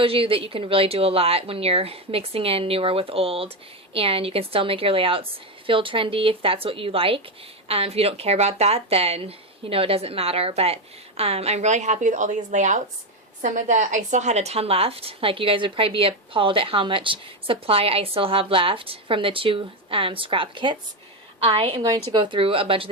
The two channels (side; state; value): both; normal; correlation 0.10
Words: you that you can really do a lot when you're mixing in newer with old, and you can still make your layouts feel trendy if that's what you like. If you don't care about that, then, you know, it doesn't matter. But I'm really happy with all these layouts. I still had a ton left. Like, you guys would probably be appalled at how much supply I still have left from the 2 scrap kits. I am going to go through a bunch of